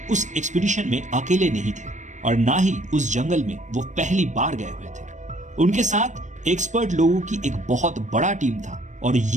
उस एक्सपीडिशन में अकेले नहीं थे और ना ही उस जंगल में वो पहली बार गए हुए थे। उनके साथ एक्सपर्ट लोगों की एक बहुत बड़ा टीम था और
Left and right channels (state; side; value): late; left; 0.35 ms